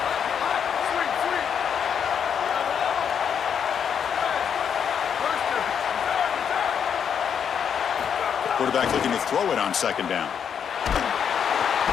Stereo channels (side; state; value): right; quieter; 7.7 dB